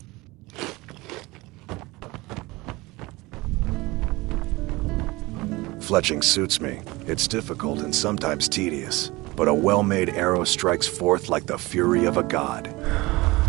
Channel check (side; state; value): left; quieter; 21.9 dB